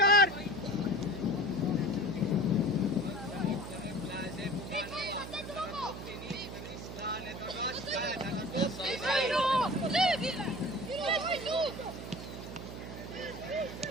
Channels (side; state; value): right; noise; hum, 9 dB below the sound